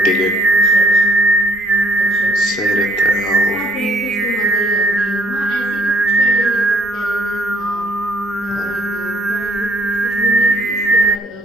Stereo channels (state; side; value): normal; both; correlation 0.62